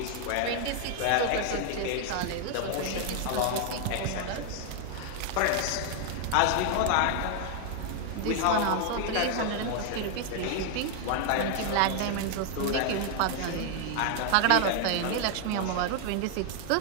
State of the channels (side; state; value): both; different; correlation 0.00